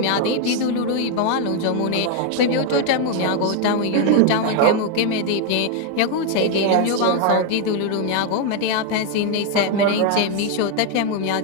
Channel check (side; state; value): both; different; correlation 0.01